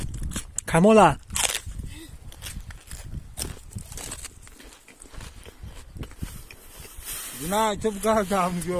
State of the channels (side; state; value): both; identical; correlation 1.00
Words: کمال نه تو بگردم